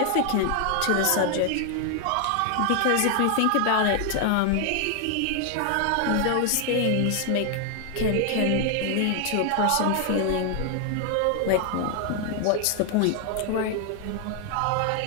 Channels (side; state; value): both; different; correlation 0.00